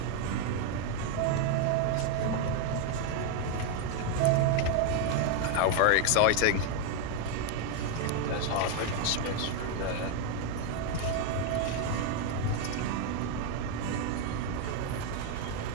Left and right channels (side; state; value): both; different; correlation 0.01